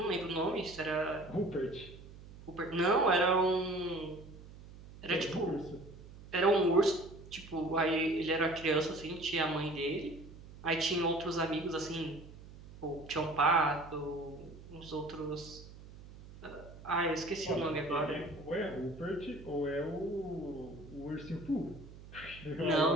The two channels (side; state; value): right; noise; hum, 17 dB below the sound